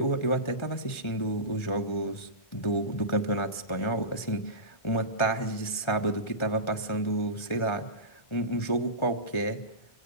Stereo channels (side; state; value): right; late; 1.4 ms